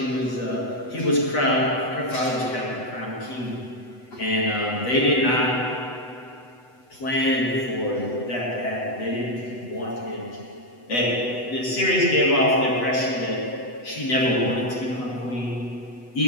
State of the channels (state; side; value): late; right; 8.0 ms